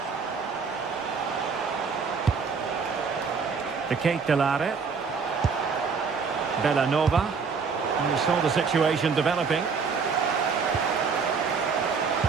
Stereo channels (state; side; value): quieter; left; 5.4 dB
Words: The Kate Delare. Bellanova. And we saw the situation developing.